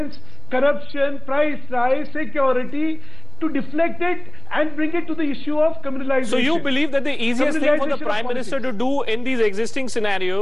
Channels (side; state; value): right; noise; rumble, 19 dB below the sound